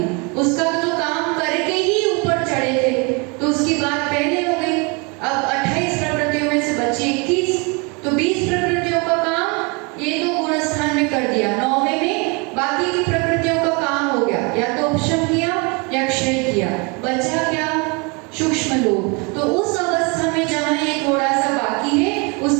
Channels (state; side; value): quieter; left; 30.6 dB